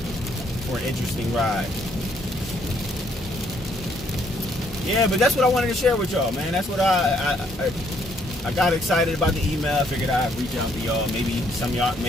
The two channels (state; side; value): normal; both; correlation 0.68